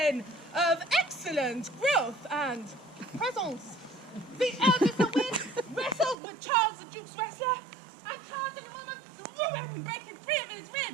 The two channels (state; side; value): drops out; left; at 6.2 s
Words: of excellent growth and presence. The eldest of which wrestled with Charles the Duke's wrestler, and Charles in a moment threw him, breaking 3 of his